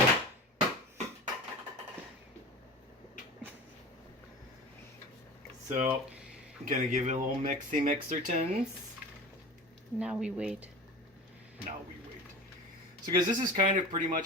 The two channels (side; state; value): both; normal; correlation 0.34